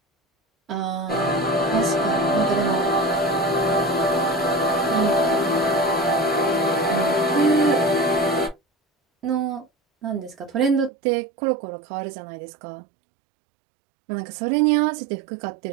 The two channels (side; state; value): left; drops out; at 10.9 s